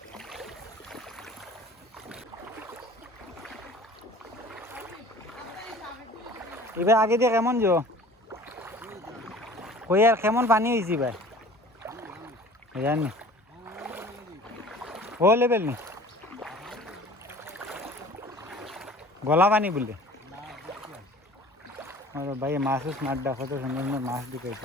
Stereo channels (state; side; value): normal; both; correlation 0.45